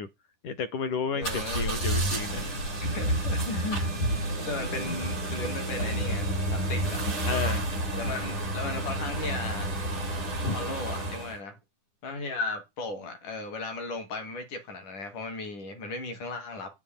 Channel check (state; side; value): late; right; 10 ms